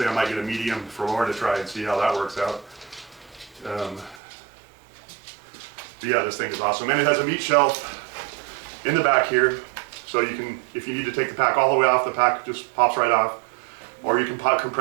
I might get a medium for Laura to try and see how that works out. But yeah, this thing is awesome. And it has a meat shelf in the back here. So you can, if you need to take the pack all the way off, the pack just pops right off. Or you can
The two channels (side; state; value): left; drops out; at 4.2 s